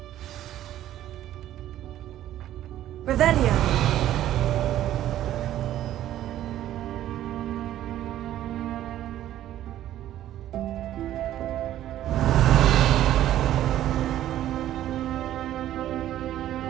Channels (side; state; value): left; quieter; 12.6 dB